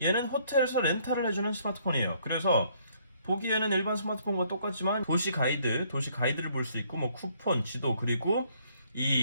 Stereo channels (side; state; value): both; inverted; correlation -0.66